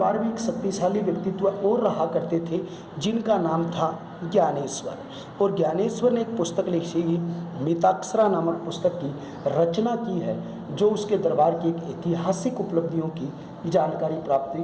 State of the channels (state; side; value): identical; both; correlation 1.00